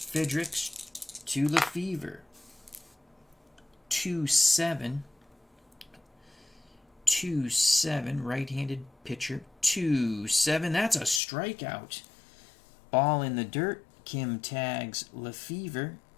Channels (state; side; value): drops out; right; at 11.2 s